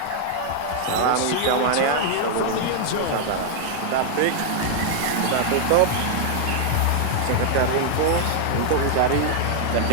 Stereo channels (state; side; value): different; both; correlation 0.00